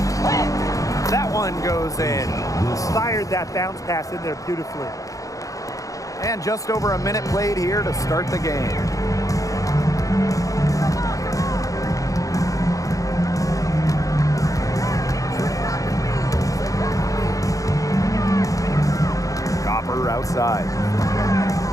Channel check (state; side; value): late; right; 0.16 ms